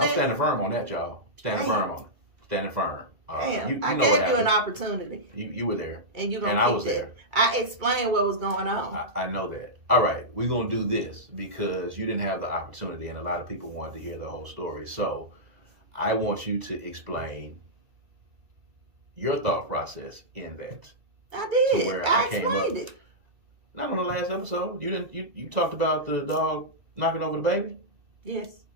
standing firm on that, y'all. Standing firm on it. Standing firm. Damn, I know gave what you an happened. opportunity. You were there. And you gonna and keep I was that. there. I explained what was going on. I know that. All right, we're going to do this because you didn't have the opportunity and a lot of people wanted to hear the whole story. So I want you to explain your thought process in that. I did. To where I came up. explained it. Not on the last episode. You talked about the dog knocking over the baby? Yes.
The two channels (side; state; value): left; late; 2.3 ms